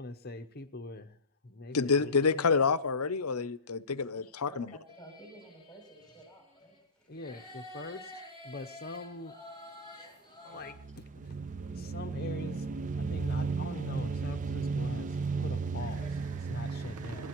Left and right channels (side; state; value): both; normal; correlation 0.02